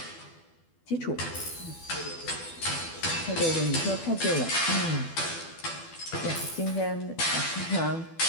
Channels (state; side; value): late; right; 12 ms